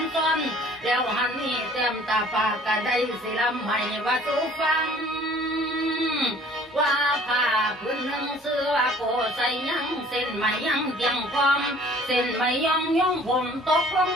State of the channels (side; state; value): both; normal; correlation 0.53